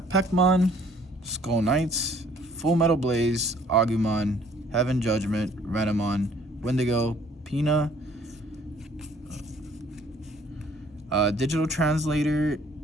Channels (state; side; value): normal; both; correlation 0.58